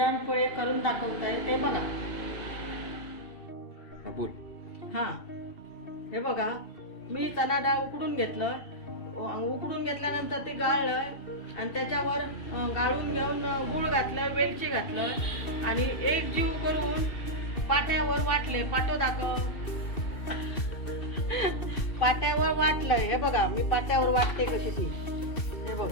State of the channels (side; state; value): right; late; 2.7 ms